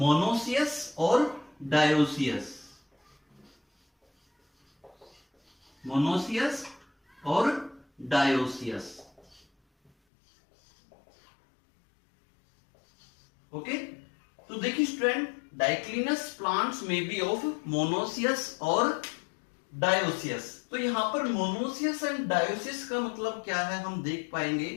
और डायोसियस, मोनोसियस और डायोसियस। ओके, तो देखिए स्टूडेंट, डाइक्लिनस प्लांट्स में बी ऑफ मोनोसियस और डायोसियस। तो यहां पर मोनोसियस एंड डायोसियस का मतलब क्या है, हम देख पाएंगे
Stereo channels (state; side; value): drops out; right; at 9.9 s